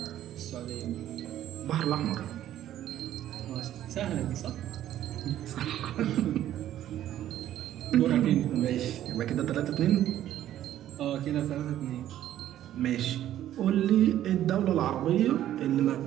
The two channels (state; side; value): quieter; left; 12.2 dB